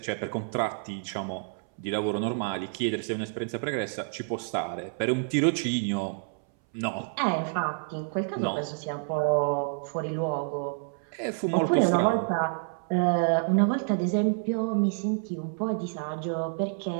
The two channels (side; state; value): left; silent; 59 dB below the other